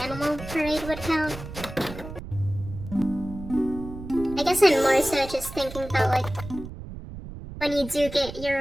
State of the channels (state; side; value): noise; right; rumble, 11 dB below the sound